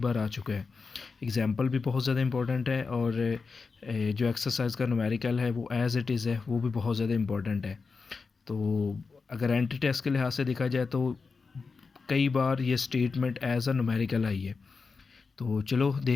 आ चुका है। एग्जाम्पल भी बहुत ज़्यादा इम्पोर्टेंट है और जो एक्सरसाइज का न्यूमेरिकल है वो एज़ इट इज़ है, वो भी बहुत ज़्यादा इम्पोर्टेंट है। तो अगर एंट्री टेस्ट के लिहाज से देखा जाए तो कई बार ये स्टेटमेंट एज़ अ न्यूमेरिकल आई है। तो चलो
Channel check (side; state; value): right; quieter; 4.7 dB